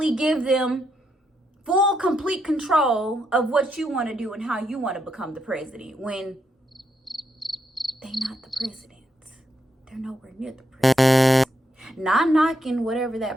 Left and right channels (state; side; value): normal; both; correlation 0.80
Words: give them full, complete control of what you want to do and how you want to become the president when they're not the president. They're nowhere near the president. Not knocking whatever